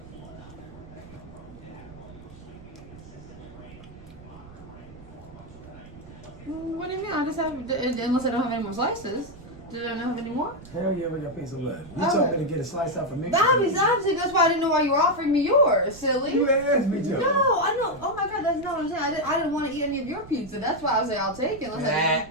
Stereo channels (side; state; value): right; noise; rumble, 18 dB below the sound